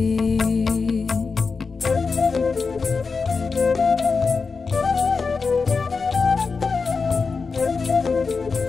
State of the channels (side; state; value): right; quieter; 4.7 dB